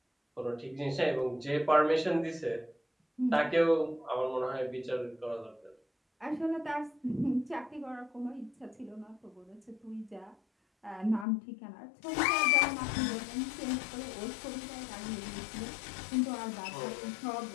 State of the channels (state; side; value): drops out; right; at 11.2 s